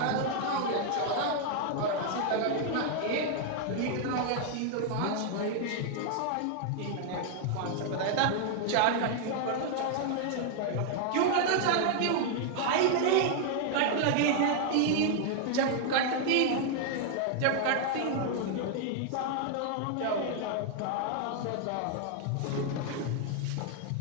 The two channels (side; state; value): both; different; correlation 0.00